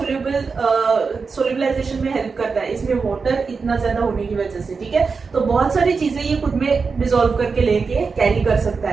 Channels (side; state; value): left; quieter; 4.9 dB